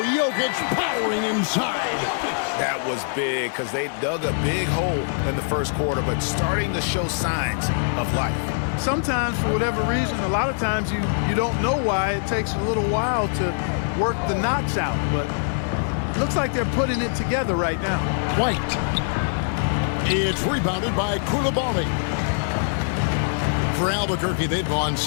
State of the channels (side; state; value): right; silent; digital silence